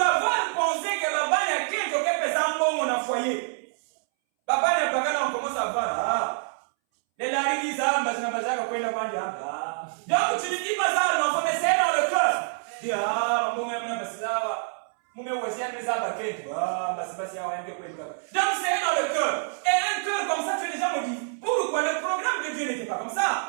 pensé que Baba n'a qu'un qui est un bon dans le foyer. Baba n'a pas quand on commence à voir. Les laris disent donc tu ne dis pas ça à l'enfant, mais c'est dans le cœur. Il dit donc c'est dans le cœur. Et un cœur comme ça, tu as déjà me dit. Pourquoi le programme de Dieu n'était pas comme ça?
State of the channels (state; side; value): silent; left; 61 dB below the other